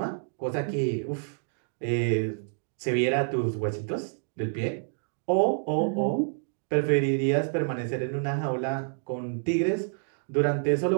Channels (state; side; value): silent; left; digital silence